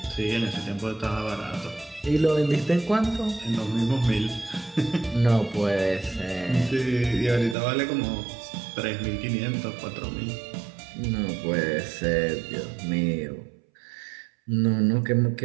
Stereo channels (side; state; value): left; drops out; at 7.6 s